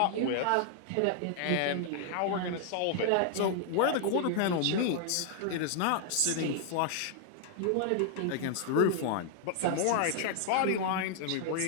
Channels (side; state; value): both; different; correlation 0.00